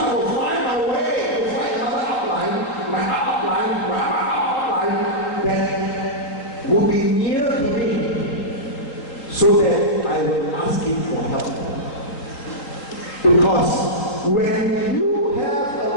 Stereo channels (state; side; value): late; right; 3.7 ms